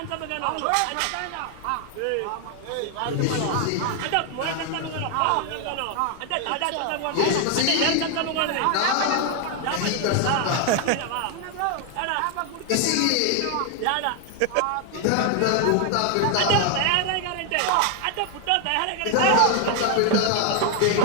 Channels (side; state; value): both; different; correlation 0.00